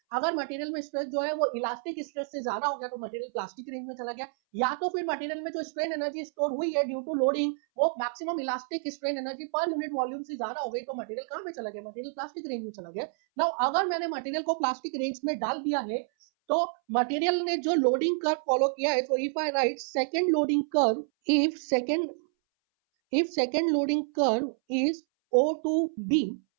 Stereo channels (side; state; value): left; silent; 59 dB below the other